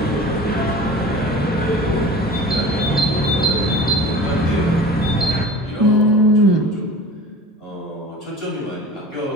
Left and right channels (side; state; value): both; normal; correlation 0.39